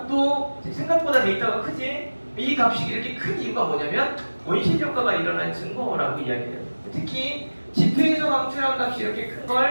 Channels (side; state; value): both; inverted; correlation -1.00